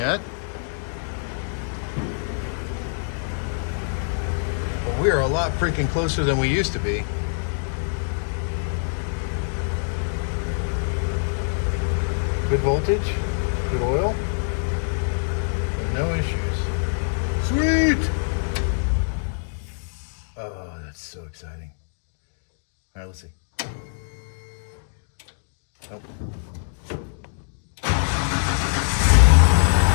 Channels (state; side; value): silent; right; digital silence